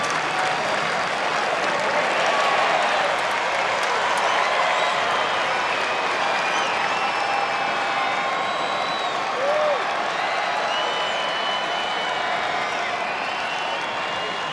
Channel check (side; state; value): both; identical; correlation 1.00